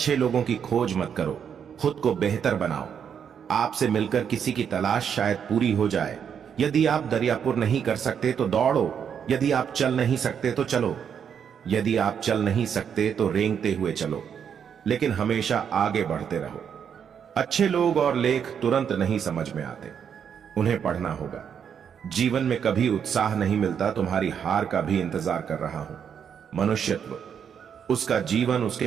लोगों की खोज मत करो, खुद को बेहतर बनाओ। आपसे मिलकर किसी की तलाश शायद पूरी हो जाए। यदि आप दरियापुर नहीं कर सकते तो दौड़ो, यदि आप चल नहीं सकते तो चलो, यदि आप चल नहीं सकते तो रेंगते हुए चलो, लेकिन हमेशा आगे बढ़ते रहो। अच्छे लोग और लेख तुरंत नहीं समझ में आते, उन्हें पढ़ना होगा। जीवन में कभी उत्साह नहीं मिलता, तुम्हारी हार का भी इंतजार कर रहा हूं। मनुष्यत्व, उसका जीवन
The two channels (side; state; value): left; quieter; 7.8 dB